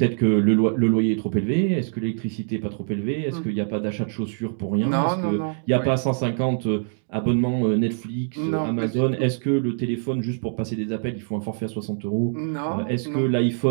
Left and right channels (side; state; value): left; silent; digital silence